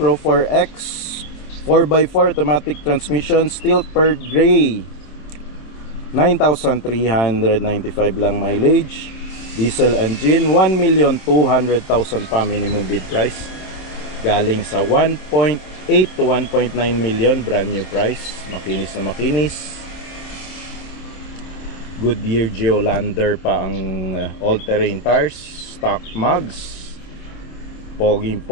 4X 4x4 automatic transmission, steel pearl gray. 9,395 lang mileage. Diesel engine, 1,200,000 pa minimum bid price. Galing sa 1.8 to 1.9 million brand new price. Makinis na makinis. Goodyear Geolander pa ang all-terrain tires. Stock mugs.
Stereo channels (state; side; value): late; right; 26 ms